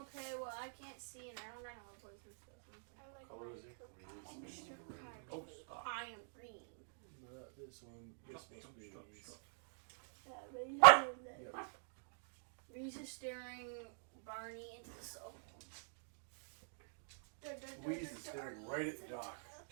well, I can't see and I don't know what poison stuff. I like Color is my it? extra Wheeze. card. Oh, stop. I am green. Not this one. This must be Wheeze. Yep. Reese is staring Barney into the soul. Wheeze is staring right at Doc.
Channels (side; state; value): left; silent; digital silence